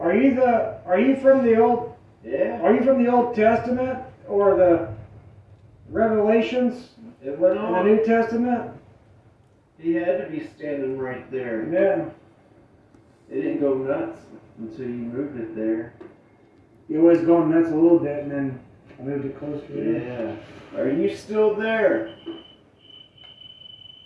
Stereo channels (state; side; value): identical; both; correlation 1.00